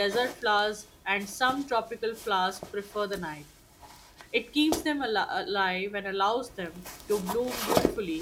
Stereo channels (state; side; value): identical; both; correlation 1.00